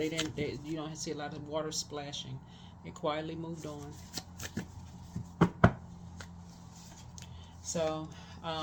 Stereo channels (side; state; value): both; identical; correlation 1.00